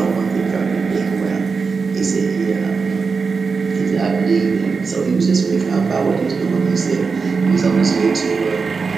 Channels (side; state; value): left; quieter; 4.9 dB